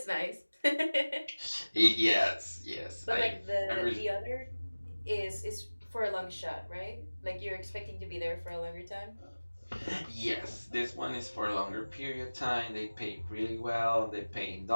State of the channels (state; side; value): inverted; both; correlation -1.00